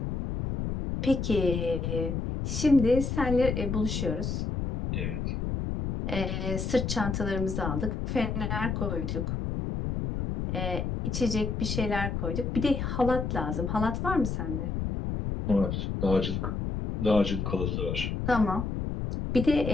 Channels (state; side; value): noise; left; rumble, 2 dB below the sound